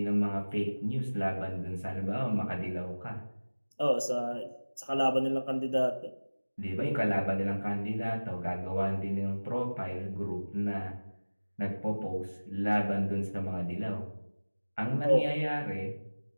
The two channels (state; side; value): inverted; both; correlation -1.00